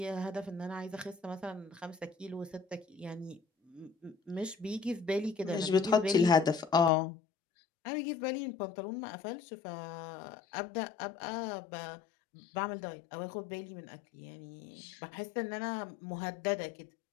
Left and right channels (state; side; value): drops out; right; at 6.9 s